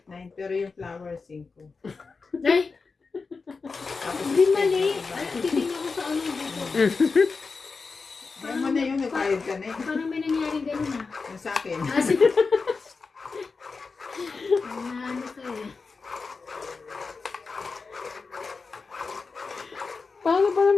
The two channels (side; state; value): right; quieter; 4.5 dB